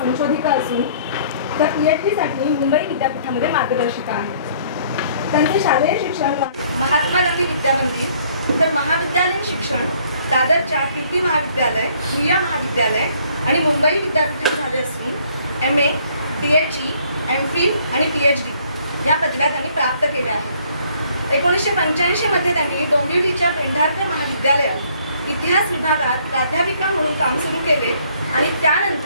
असून त्या PhD साठी मुंबई विद्यापीठामध्ये मार्गदर्शिका आहेत। त्यांचे शालेय शिक्षण महात्मा गांधी विद्यामंदिर तर महाविद्यालयीन शिक्षण दादरच्या कीर्ती महाविद्यालय, भुया महाविद्यालय आणि मुंबई विद्यापीठात झाले असून MA, DHE, MPhil आणि PhD या पदव्या त्यांनी प्राप्त केल्या आहेत। 1985 मध्ये त्यांनी डोंबिवलीच्या पेंढारकर महाविद्यालयात इतिहास विभागात प्राध्यापिका म्हणून काम सुरू केले आणि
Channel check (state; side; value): inverted; both; correlation -0.62